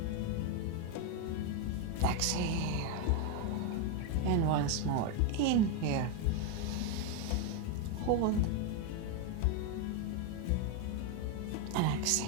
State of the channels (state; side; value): different; both; correlation 0.02